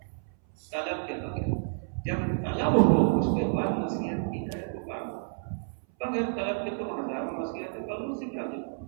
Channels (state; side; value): silent; left; 58 dB below the other